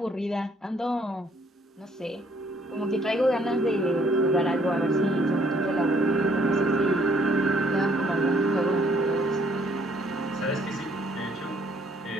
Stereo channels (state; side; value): normal; both; correlation 0.65